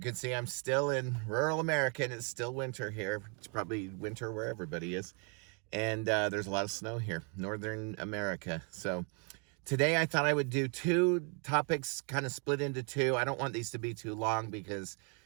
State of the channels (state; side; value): quieter; left; 36.3 dB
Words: see, I'm still in rural America and it's still winter here. It's probably winter where everybody is. And there's a lot of snow here, northern America. So today I thought I would do two topics kind of split into two. I don't want these to be too long because